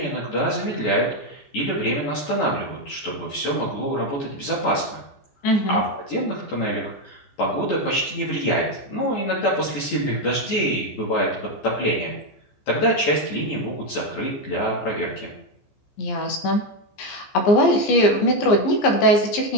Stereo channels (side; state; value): right; late; 14 ms